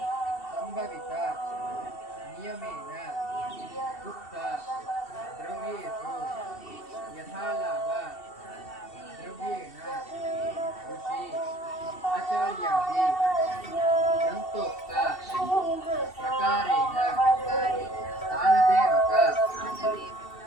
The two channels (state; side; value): late; right; 2.7 ms